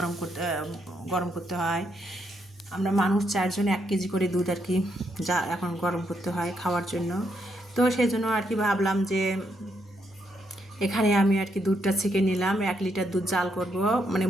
গরম করতে হয়। আমরা মানুষ 4 জন 1 কেজি করে দুধ আর কি যা এখন গরম করতে হয় খাওয়ার জন্য। তো সেই জন্য আর কি ভাবলাম যে এখানে আমি আর কি দুধটা ছেঁকে নিলাম। 1 লিটার দুধ জাল করব, মানে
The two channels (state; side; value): normal; both; correlation 0.77